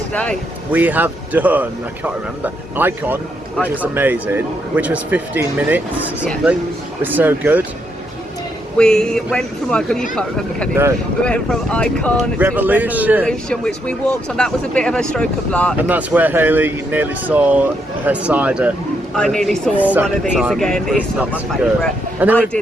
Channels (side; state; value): both; normal; correlation 0.77